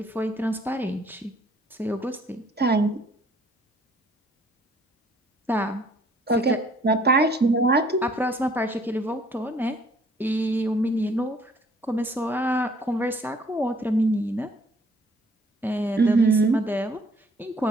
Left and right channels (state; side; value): normal; both; correlation 0.60